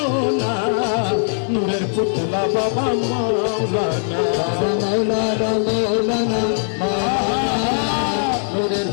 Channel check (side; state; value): right; silent; 66 dB below the other